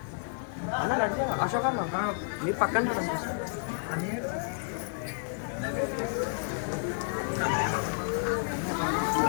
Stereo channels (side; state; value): right; silent; 57 dB below the other